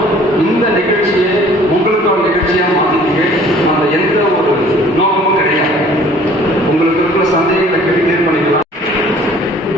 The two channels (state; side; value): normal; both; correlation 0.53